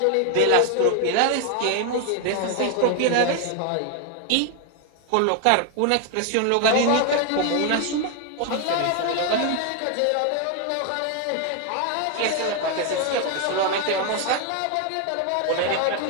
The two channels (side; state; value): both; different; correlation 0.01